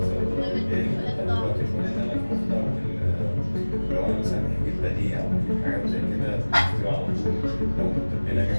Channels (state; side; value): inverted; both; correlation -1.00